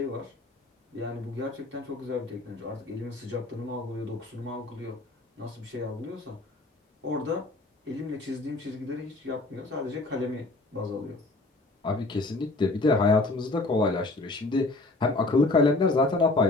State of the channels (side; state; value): right; quieter; 3.1 dB